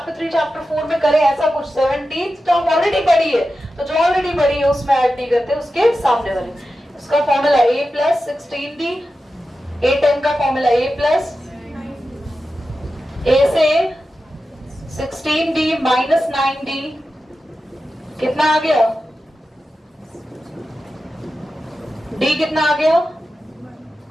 3 चैप्टर 4 में करे ऐसा कुछ 17th टर्म ऑलरेडी बड़ी है तो जो ऑलरेडी बड़ी है उसमें ऐड नहीं करते उसके सामने वाले उसका formula a plus 16d a10 का फॉर्मूला a प्लस a से 16d माइनस 9d कितना आ गया d कितना आ गया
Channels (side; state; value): both; normal; correlation 0.92